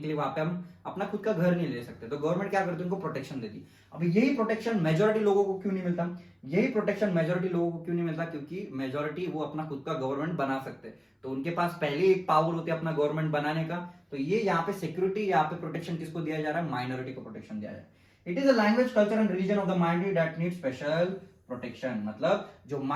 लिए वहां पे हम अपना खुद का घर नहीं ले सकते, तो गवर्नमेंट क्या करती है, उनको प्रोटेक्शन देती। अभी यही प्रोटेक्शन मेजोरिटी लोगों को क्यों नहीं मिलता, यही प्रोटेक्शन मेजोरिटी लोगों को क्यों नहीं मिलता, क्योंकि मेजोरिटी वो अपना खुद का गवर्नमेंट बना सकते हैं, तो उनके पास पहले एक पावर होती है अपना गवर्नमेंट बनाने का। तो ये यहाँ पे सिक्योरिटी, यहाँ पे प्रोटेक्शन किसको दिया जा रहा है, माइनॉरिटी को प्रोटेक्शन दिया जा रहा है। It is a language culture and religion of the minority that need special protection, मतलब जो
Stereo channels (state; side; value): identical; both; correlation 1.00